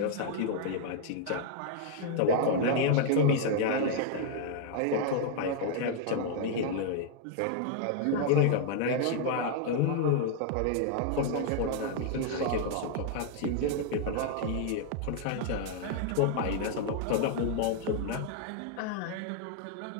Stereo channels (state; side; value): different; both; correlation 0.00